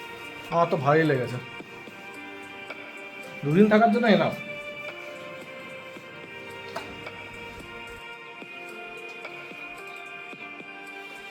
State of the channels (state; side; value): identical; both; correlation 1.00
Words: আমার তো ভালোই লেগেছে। দুদিন থাকার জন্য এনাফ।